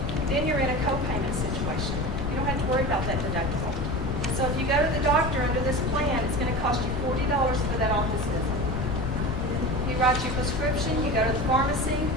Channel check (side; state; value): left; noise; rumble, 1 dB below the sound